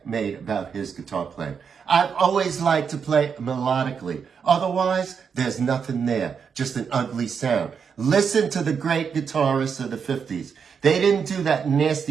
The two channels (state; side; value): quieter; left; 6.5 dB